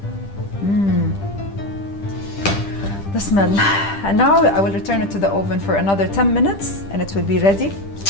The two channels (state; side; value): late; right; 10 ms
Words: The smell. And now I will return it to the oven for another 10 minutes and it will be ready